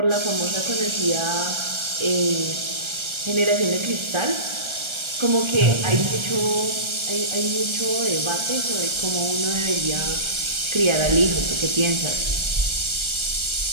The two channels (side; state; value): left; late; 1.3 ms